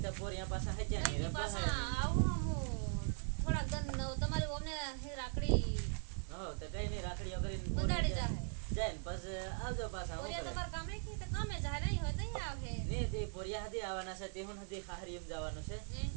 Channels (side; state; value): left; silent; 51 dB below the other